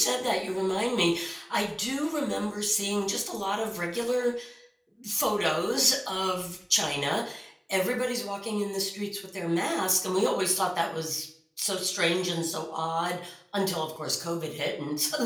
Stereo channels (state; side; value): identical; both; correlation 1.00